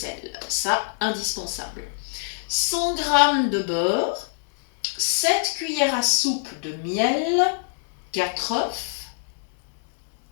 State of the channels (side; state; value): right; silent; digital silence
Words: ça indispensable. 100 g de beurre, 7 cuillères à soupe de miel, 4 œufs,